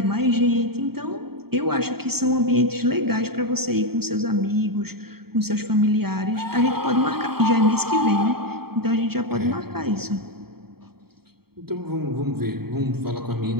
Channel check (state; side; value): late; left; 0.95 ms